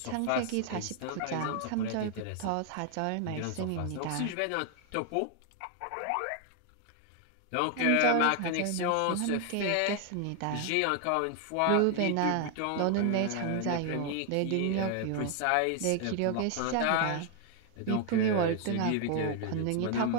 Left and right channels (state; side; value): different; both; correlation 0.00